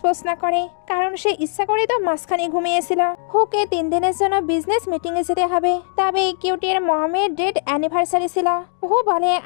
না করে, কারণ সে ইচ্ছা করে তো মাঝখানে ঘুমিয়েছিল। হুকে 3 দিনের জন্য বিজনেস মিটিং এ যেতে হবে, তবে কিউটির মমের ডেট অ্যানিভার্সারি ছিল। হু বলে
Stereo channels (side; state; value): right; silent; 66 dB below the other